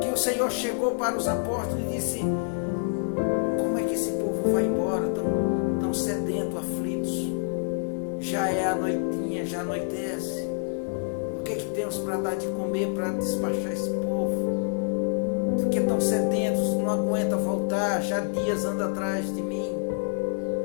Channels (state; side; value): silent; right; 60 dB below the other